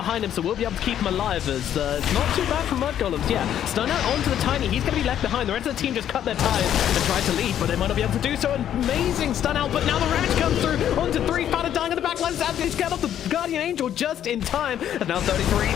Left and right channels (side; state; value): right; quieter; 10.4 dB